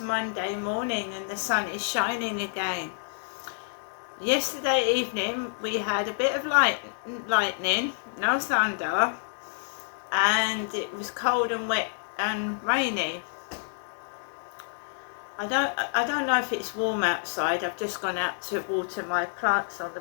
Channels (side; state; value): right; silent; digital silence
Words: morning and the sun is shining again. Yesterday evening we had a bit of lightning, no thunder, and it was cold and wet and rainy. I don't know if it's warm outside. I've just gone out to water my plants on the